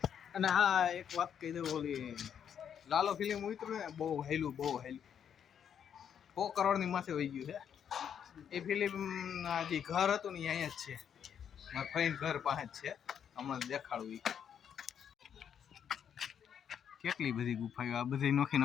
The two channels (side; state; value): right; quieter; 8.4 dB